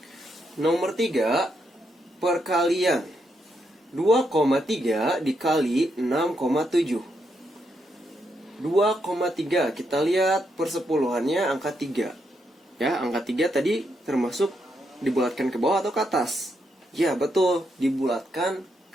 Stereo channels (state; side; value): normal; both; correlation 0.79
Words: Nomor 3, perkalian. 2,3 dikali 6,7. 2,3, kita lihat persepuluhannya angka 3. Ya, angka 3 tadi termasuk dibulatkan ke bawah atau ke atas? Ya, betul, dibulatkan